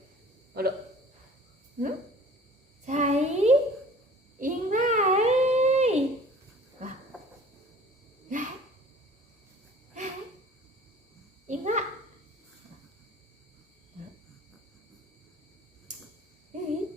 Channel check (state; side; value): normal; both; correlation 0.47